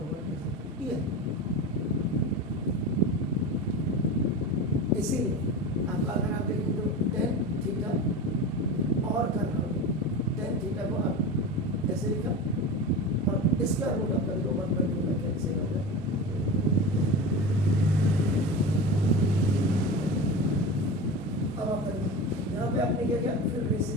1 ये। इसीलिए आपका अगर आप देखें तो tan थीटा और करना होगा, tan थीटा को आप ऐसे लिखा और इसका रूट आपका 1/2 में कैंसिल हो गया। अब आप यहाँ पे आपने क्या किया, फिर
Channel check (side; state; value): both; normal; correlation 0.28